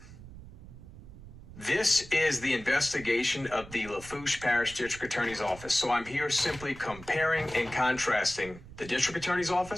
This is the investigation of the Lafourche Parish District Attorney's Office. So I'm here simply comparing and contrasting the District Attorney's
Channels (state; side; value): noise; right; rumble, 16 dB below the sound